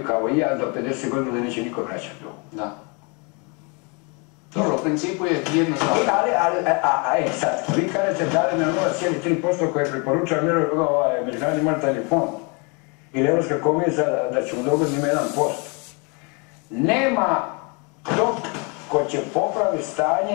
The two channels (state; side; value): quieter; right; 32.4 dB